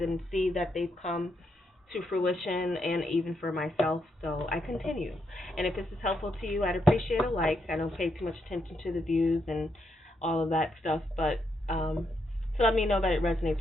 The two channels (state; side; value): normal; both; correlation 0.79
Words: see that they've come to fruition, and even for myself, so I continue. And if this is helpful to you, I'd appreciate a like. I don't pay too much attention to the views and all of that stuff, but to let me know that it resonates